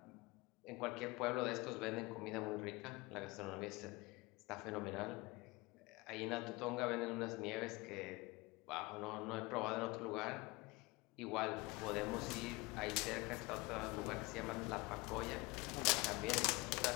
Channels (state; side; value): quieter; right; 23.8 dB